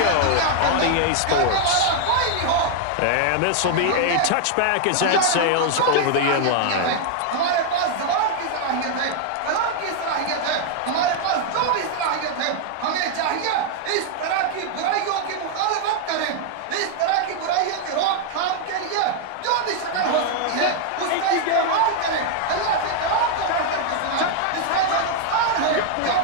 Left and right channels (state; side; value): different; both; correlation 0.00